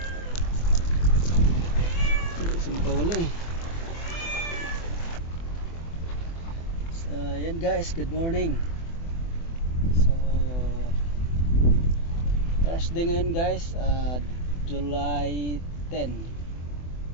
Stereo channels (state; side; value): late; right; 24 ms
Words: Saan nakawala eh. So yan guys, good morning. So Thursday ngayon guys, July 10